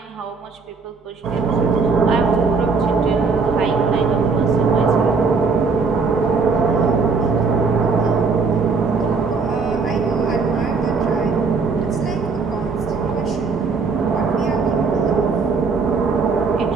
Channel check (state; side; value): quieter; left; 4.7 dB